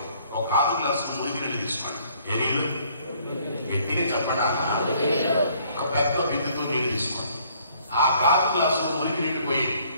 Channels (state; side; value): inverted; both; correlation -0.62